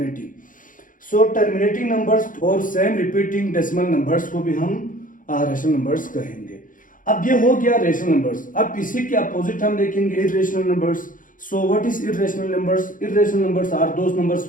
Terminating numbers और सेम रिपीटिंग डेसिमल नंबर्स को भी हम रेशनल नंबर्स कहेंगे। अब ये हो गया रेशनल नंबर्स। अब इसी के अपोजिट हम देखेंगे irrational numbers. What is irrational numbers? Irrational numbers are those numbers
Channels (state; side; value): late; right; 0.39 ms